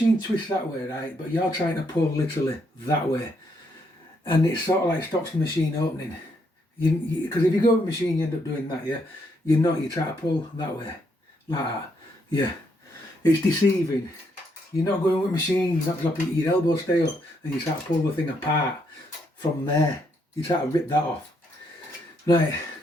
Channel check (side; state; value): both; normal; correlation 0.75